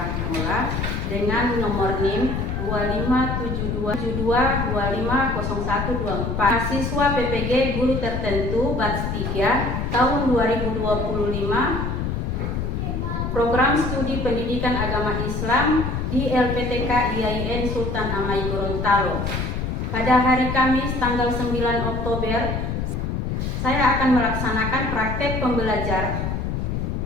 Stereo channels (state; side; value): noise; left; rumble, 2 dB below the sound